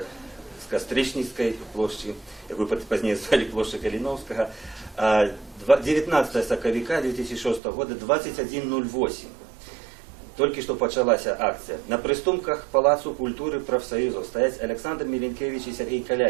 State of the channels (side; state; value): left; drops out; at 7.6 s